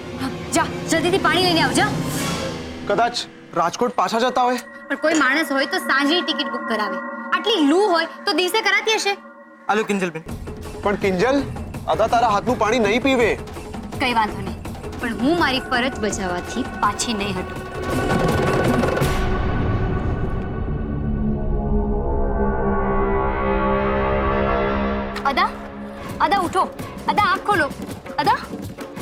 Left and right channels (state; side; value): identical; both; correlation 1.00